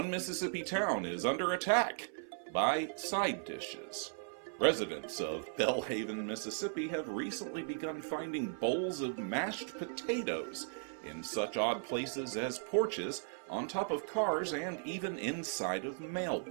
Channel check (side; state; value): left; silent; 53 dB below the other